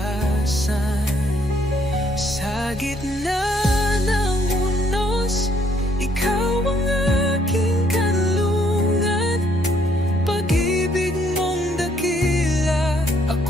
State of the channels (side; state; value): both; normal; correlation 0.69